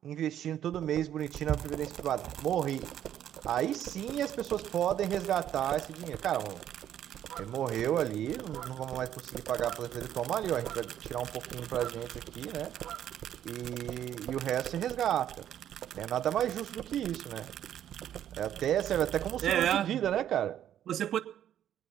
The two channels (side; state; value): left; quieter; 10.8 dB